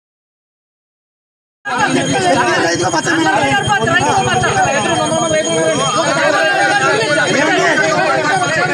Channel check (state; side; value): identical; both; correlation 1.00